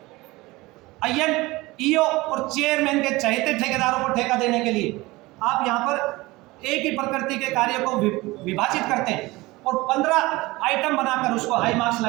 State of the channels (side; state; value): left; quieter; 21.0 dB